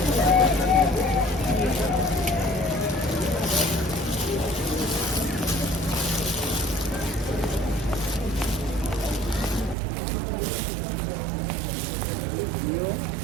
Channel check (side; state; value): left; drops out; at 9.8 s